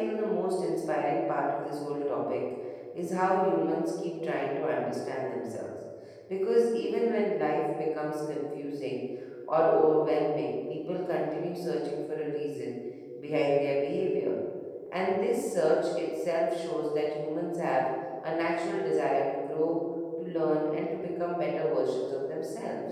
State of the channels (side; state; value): both; identical; correlation 1.00